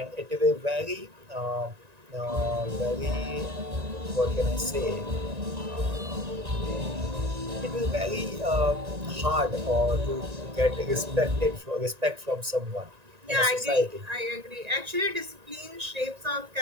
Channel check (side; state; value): left; late; 1.9 ms